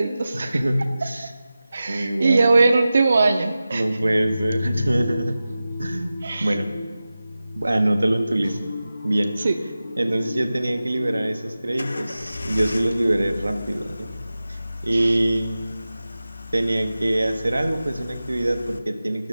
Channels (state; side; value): inverted; both; correlation -0.95